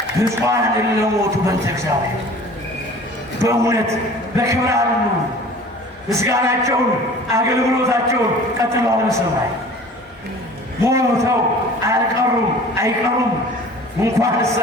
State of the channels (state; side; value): normal; both; correlation 0.45